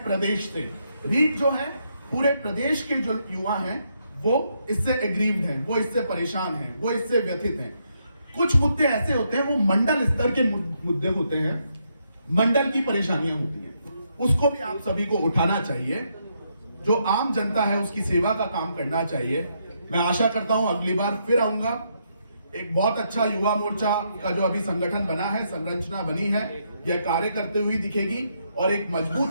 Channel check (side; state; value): both; inverted; correlation -0.77